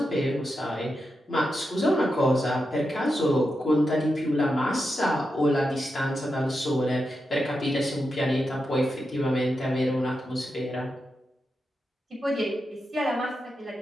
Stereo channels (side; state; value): both; normal; correlation 0.88